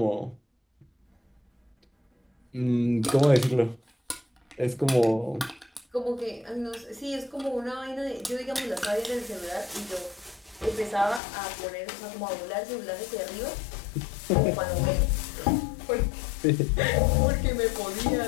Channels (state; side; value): drops out; right; at 11.2 s